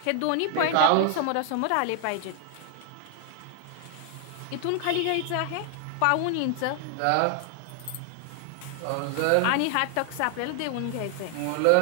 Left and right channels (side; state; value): both; different; correlation 0.00